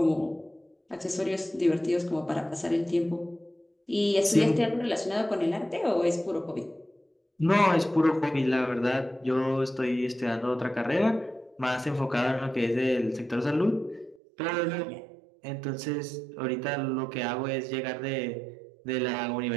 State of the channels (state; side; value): drops out; left; at 14.2 s